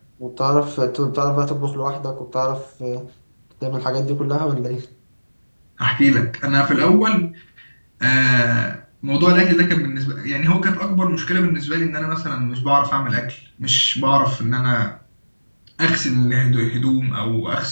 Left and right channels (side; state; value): both; inverted; correlation -1.00